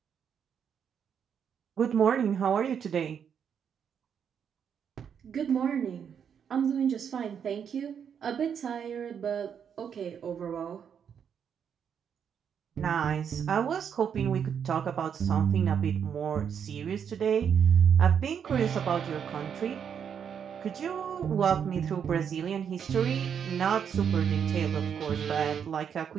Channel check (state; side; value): quieter; left; 7.7 dB